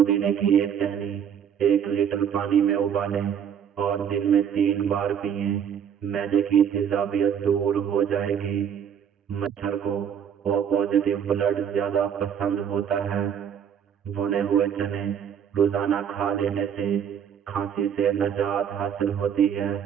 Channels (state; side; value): quieter; left; 8.4 dB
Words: की एक टहनी 1 लीटर पानी में उबालें और दिन में 3 बार पिएं। मैदे की तेजाबियत दूर हो जाएगी। मच्छर को ओ पॉजिटिव ब्लड ज्यादा पसंद होता है। भुने हुए चने रोजाना खा लेने से खांसी से निजात हासिल होती है।